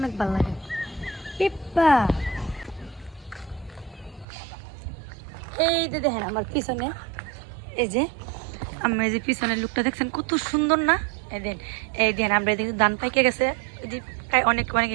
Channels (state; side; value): drops out; left; at 4.2 s